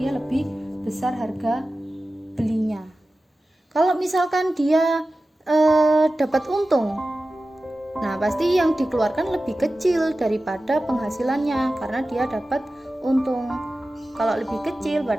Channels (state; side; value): normal; both; correlation 0.95